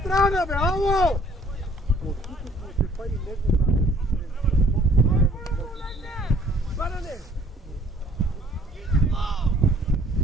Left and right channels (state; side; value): normal; both; correlation 0.57